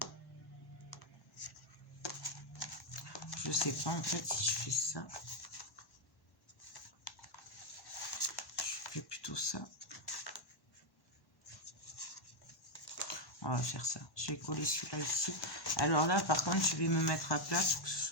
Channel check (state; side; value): late; right; 1.1 ms